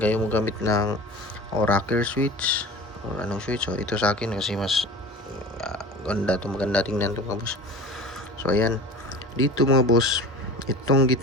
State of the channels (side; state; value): both; normal; correlation 0.37